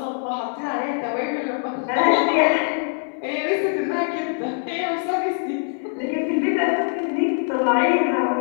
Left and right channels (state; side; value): silent; right; 64 dB below the other